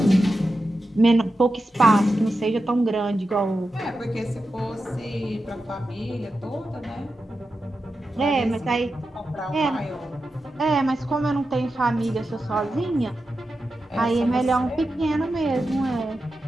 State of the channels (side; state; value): both; normal; correlation 0.91